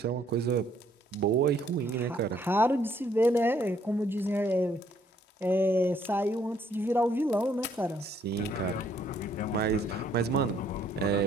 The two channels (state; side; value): normal; both; correlation 0.66